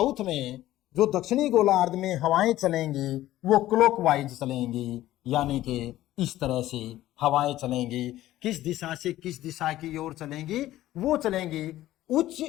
में, जो दक्षिणी गोलार्ध में हवाएं चलेंगी वो क्लॉकवाइज चलेंगी, यानी कि इस तरह से हवाएं चलेंगी। किस दिशा से किस दिशा की ओर चलेंगी? वो चलेंगी उच्च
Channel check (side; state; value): right; quieter; 14.7 dB